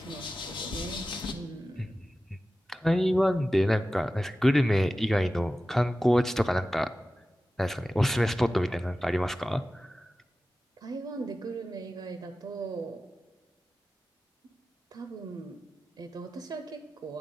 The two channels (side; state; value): both; normal; correlation 0.95